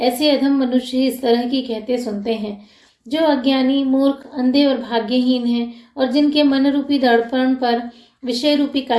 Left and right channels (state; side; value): identical; both; correlation 1.00